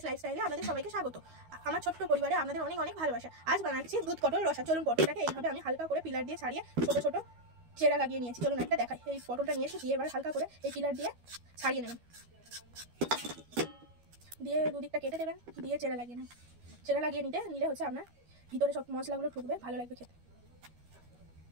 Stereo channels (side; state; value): left; late; 12 ms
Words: লাইফস্টাইলে আপনাদের সবাইকে স্বাগত। আমার ছোট্ট পরিবারে আপনাদের অনেক অনেক ভালোবাসা। আজ বানাচ্ছি দুধ পটল রসা। চলুন পটলটাকে এইভাবে আমি হালকা করে পিলার দিয়ে ছাড়িয়ে ছোট ছোট চেরা লাগিয়ে নিয়েছি। চলুন একটা দেখাই। এই পটলটা নিয়েছি, দিয়ে এবার হালকা করে এই পিলার দিয়ে ছাড়িয়ে নেবেন, দিয়ে দুদিকটা কেটে দেবেন, দিয়ে চেরা লাগিয়ে নেবেন। চেরা লাগিয়ে নিলে হচ্ছে আপনার ভিতরে সব মশলাগুলো ঢুকবে, ভালো লাগবে খেতে।